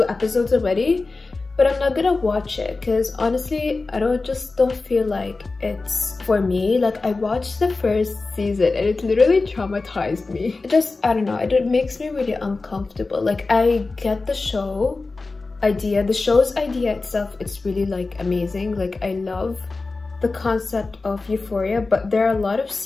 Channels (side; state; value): right; quieter; 3.7 dB